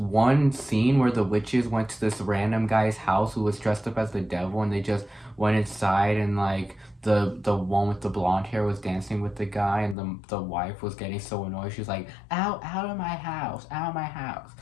scene where the witches went to this random guy's house who was dressed up as the devil, and they just went inside, and like the one with the blonde hair was dancing with the guy, and the wife was getting so annoyed. She was like, out of my house, out of my house."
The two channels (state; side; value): drops out; right; at 10.0 s